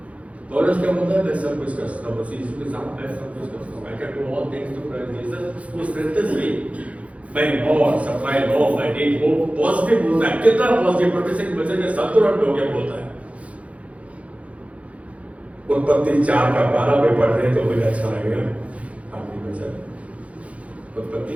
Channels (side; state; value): left; late; 0.065 ms